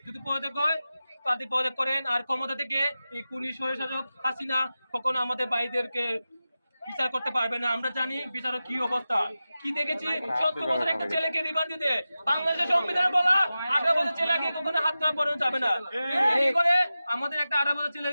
যদি পদত্যাগ হয় তাদের পদত্যাগ করেন, আর ক্ষমতা থেকে এই খুনি স্বৈরশাসক হাসিনা কখনো আমাদের ভাইদেরকে বিচার করতে পারবে না। আমরা জানি বিচারের কি অবস্থা, কি দেখেছি। 70 বছর একটা ছেলেকে রিমান্ড দিতে, বাংলাদেশের সংবিধানে বলা 18 বছর ছেলেকে কখনো হাত ধরা পড়ানো যাবে না। কি করে আমাদের একটা 18 বছর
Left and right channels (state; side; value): inverted; both; correlation -0.94